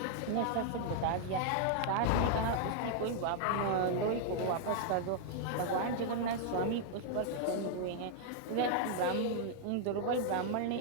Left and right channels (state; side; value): different; both; correlation -0.01